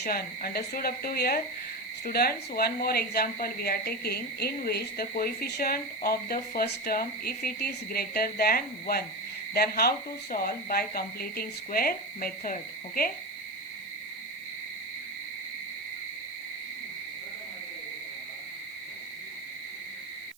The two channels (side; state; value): right; noise; hiss, 25 dB below the sound